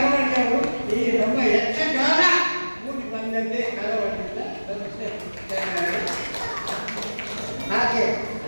ಈ ನಮ್ಮ ಯಕ್ಷಗಾನ ಕೂಡಿ ಬಂದಂತೆ ಕಳವಳಿಯಿಂದ ಹಾಗೆ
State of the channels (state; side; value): inverted; both; correlation -1.00